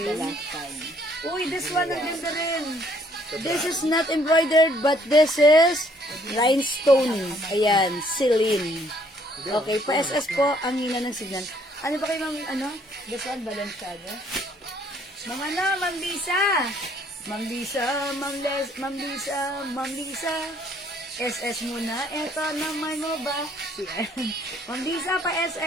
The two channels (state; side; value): normal; both; correlation 0.64